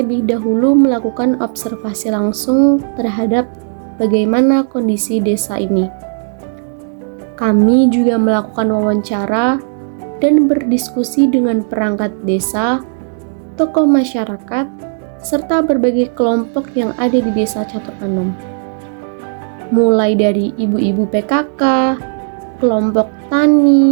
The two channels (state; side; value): silent; left; digital silence